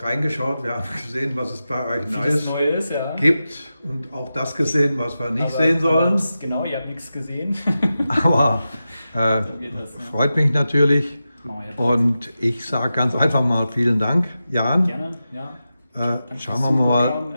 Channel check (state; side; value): inverted; both; correlation -0.92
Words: reingeschaut, wir haben gesehen, was es bei euch Vieles Neues Neue ist, ja. gibt und auch das gesehen, was wir nicht Aber sehen sollen. Genau, ihr habt nichts gesehen. Aber geht das, ne? freut mich natürlich Machen wir jetzt. und ich sage ganz einfach mal vielen Dank, Jan. Gerne, ja. Danke Schauen fürs wir mal. Zuschauen,